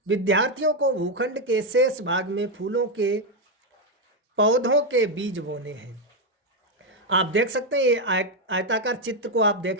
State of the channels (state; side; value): normal; both; correlation 0.04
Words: विद्यार्थियों को भूखंड के शेष भाग में फूलों के पौधों के बीज बोने हैं। आप देख सकते हैं, ये आयताकार चित्र को आप